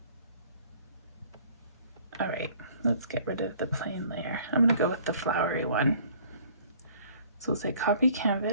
All right, let's get rid of the plain layer. I'm gonna go with the flowery one. So we'll say copy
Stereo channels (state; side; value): inverted; both; correlation -0.55